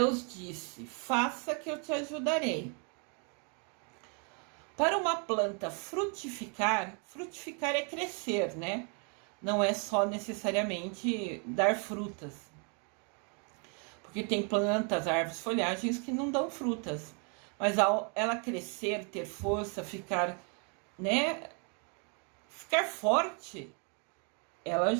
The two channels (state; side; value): quieter; left; 38.1 dB